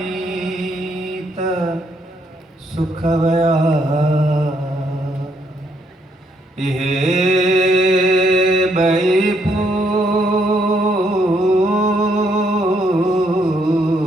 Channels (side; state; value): both; normal; correlation 0.73